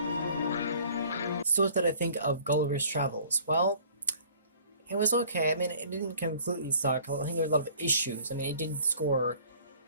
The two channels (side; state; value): both; inverted; correlation -0.53